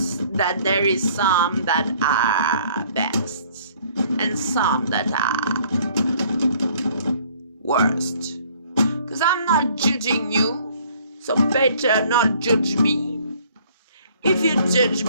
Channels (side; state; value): both; inverted; correlation -0.58